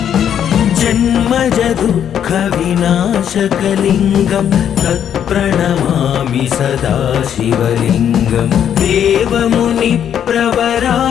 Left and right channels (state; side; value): quieter; right; 9.2 dB